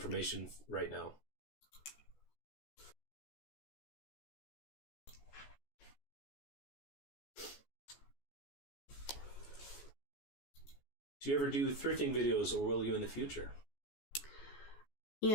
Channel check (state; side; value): late; right; 14 ms